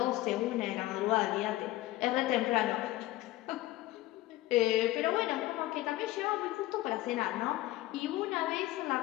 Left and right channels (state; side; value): quieter; right; 16.9 dB